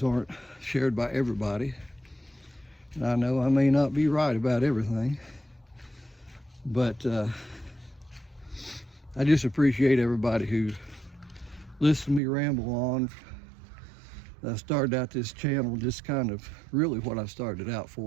aren't shared by everybody. And I know I may not be right about everything. But I just appreciate everybody who listens to me ramble on. I started out this channel just kind of, really what I started out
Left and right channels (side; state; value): left; drops out; at 12.2 s